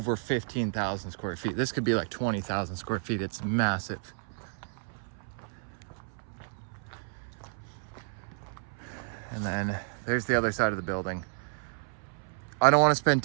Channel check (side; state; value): left; silent; 57 dB below the other